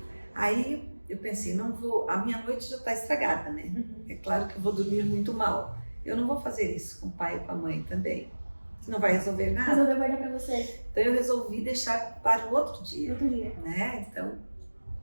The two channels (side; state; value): both; inverted; correlation -1.00